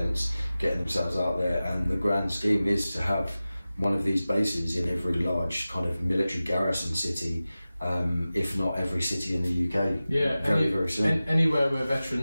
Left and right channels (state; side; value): inverted; both; correlation -0.96